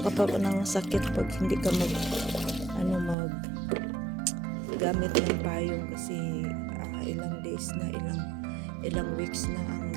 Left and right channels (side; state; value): left; drops out; at 3.2 s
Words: ka pa ng sakit pag hindi ka gamit ng payong kasi ilang days na, ilang weeks na